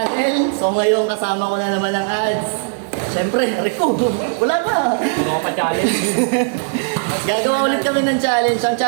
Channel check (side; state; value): left; silent; digital silence